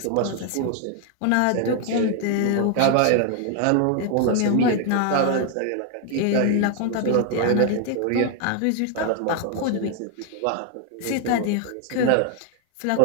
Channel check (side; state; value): both; different; correlation 0.00